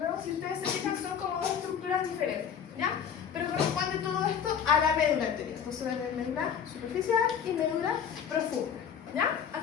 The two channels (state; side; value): quieter; right; 7.9 dB